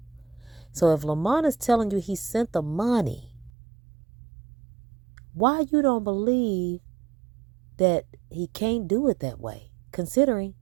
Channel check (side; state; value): left; drops out; at 3.5 s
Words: So if Lamont is telling you he sent the money, why you don't believe that he can't do it that way, considering